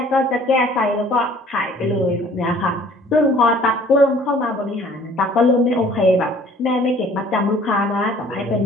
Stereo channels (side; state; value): both; normal; correlation 0.54